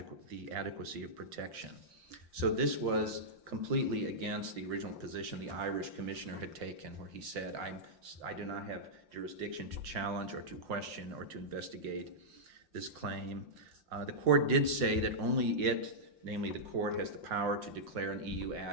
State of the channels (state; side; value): late; left; 5.7 ms